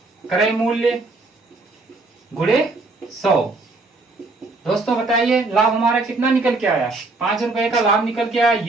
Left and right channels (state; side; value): quieter; left; 3.3 dB